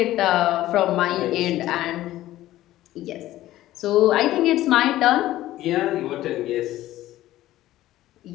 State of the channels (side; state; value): right; quieter; 14.9 dB